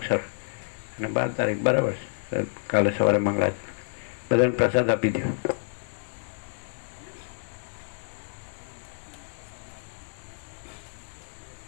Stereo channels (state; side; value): silent; right; digital silence